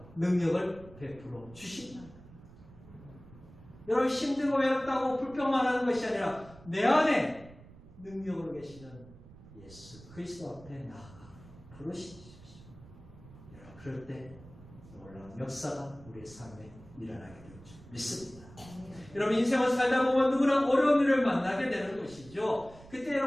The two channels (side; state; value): right; noise; rumble, 20 dB below the sound